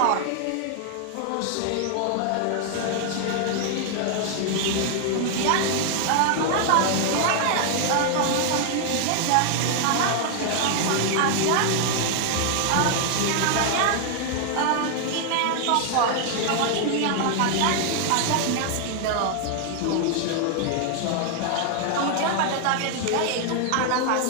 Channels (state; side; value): different; both; correlation 0.00